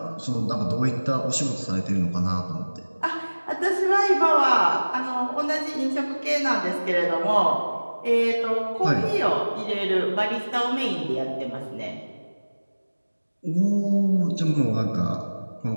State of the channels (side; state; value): both; inverted; correlation -1.00